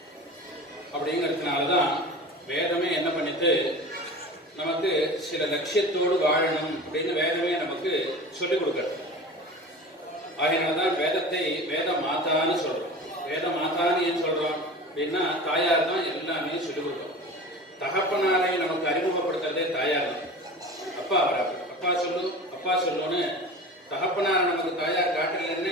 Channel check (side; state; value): both; normal; correlation 0.35